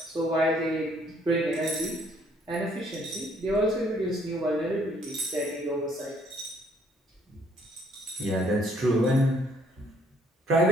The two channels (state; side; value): normal; both; correlation 0.64